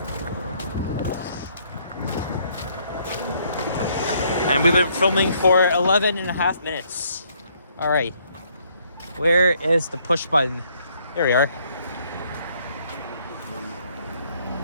And we've been filming for 11 and a half minutes. All right. Where is the push button? There we are.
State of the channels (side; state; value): both; inverted; correlation -0.67